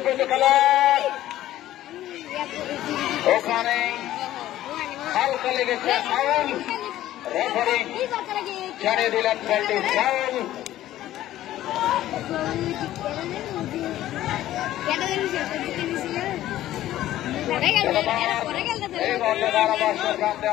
খেলার ওখানে হালকা লেগেছে ফাউল রেফারি জানিয়ে দিলেন বলটি ফাউল এই বলে ধারাভাষ্যের কাছে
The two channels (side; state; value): right; quieter; 13.8 dB